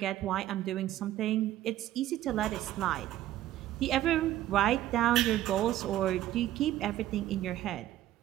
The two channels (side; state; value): left; quieter; 13.6 dB